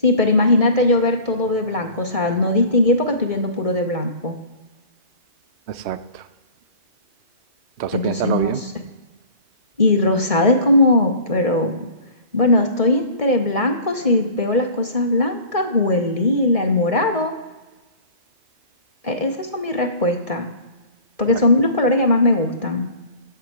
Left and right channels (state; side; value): late; left; 1.6 ms